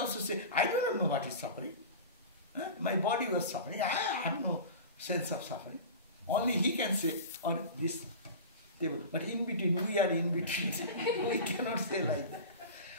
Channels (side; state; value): both; inverted; correlation -0.32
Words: also say, I do not know what is suffering. My body was suffering. I have no sense of suffering. Only he can say, or this devil. But in between, we are in between. We cannot say like that.